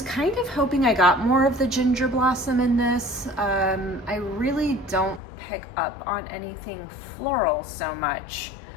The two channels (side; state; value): right; drops out; at 5.2 s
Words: kind of hoping I got more of the ginger blossom in this. I really don't pick up on anything floral so much.